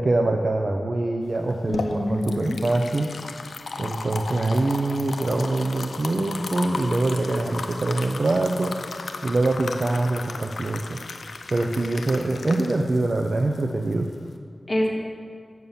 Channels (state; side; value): normal; both; correlation 0.96